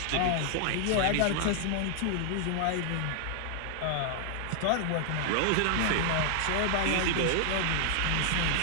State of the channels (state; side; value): different; both; correlation 0.00